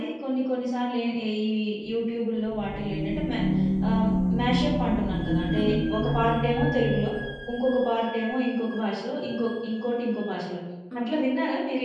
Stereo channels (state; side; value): identical; both; correlation 1.00